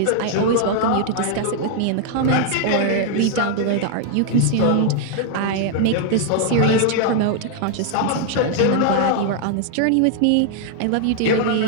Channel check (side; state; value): both; different; correlation 0.00